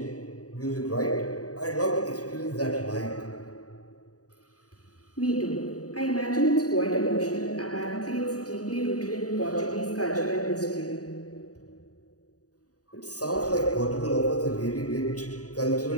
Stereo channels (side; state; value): right; late; 0.67 ms